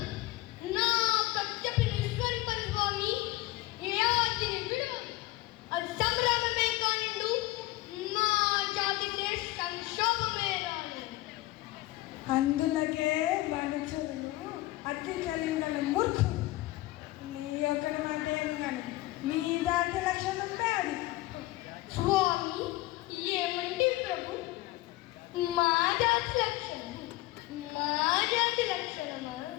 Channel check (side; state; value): right; quieter; 18.6 dB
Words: నా కచ్చపి నిష్కరింపని స్వామి ఏ ఆజ్ఞని విడువ. అది సంగ్రామమే కానిండు, మా జాతికే సంక్షోభమే రాను. అందులకే మనుషులు అతి కలిగిన మూర్ఖు. నీ ఒక్కడి మాట ఏమి కానీ మీ దాటి లక్షణం ఉంటే అది. స్వామి ఏమంటే ప్రభు, మా జాతి లక్షణం, మా జాతి లక్షణమా?